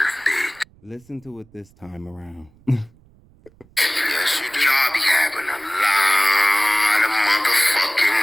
bitch. Listen to it this time around. Yes, you do. Y'all be having a lot of motherfucking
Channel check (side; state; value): right; noise; rumble, 29 dB below the sound